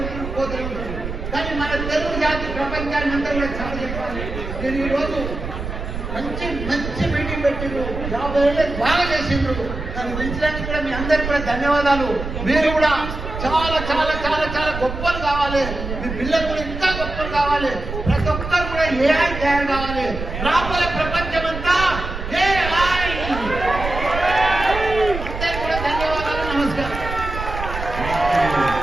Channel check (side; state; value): right; noise; rumble, 7 dB below the sound